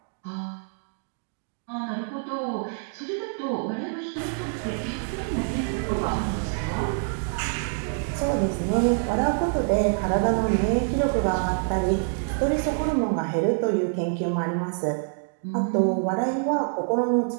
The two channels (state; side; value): silent; left; 61 dB below the other